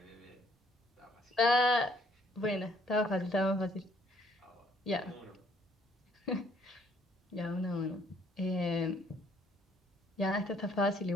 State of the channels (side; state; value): both; normal; correlation 0.64